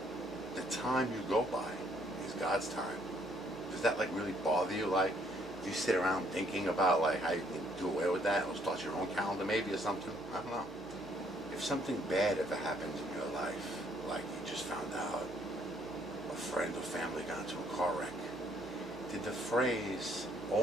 the time you go by is God's time. Does that like really bother you? Like, do you sit around thinking about like how you can do away with that or start your own calendar maybe or something? I don't know. If something bad ever happens in your life, like you just found out a friend or family got into a car wreck, did the phrase,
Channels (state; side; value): normal; both; correlation 0.67